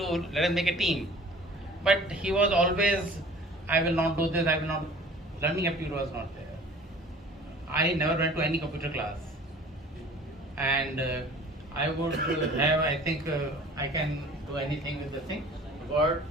a team. But he was always, I will not do this, I will not, learning aptitude was not there. I never went to any computer class. And I would have, I think I can do anything with the thing, Word,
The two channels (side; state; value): both; normal; correlation 0.47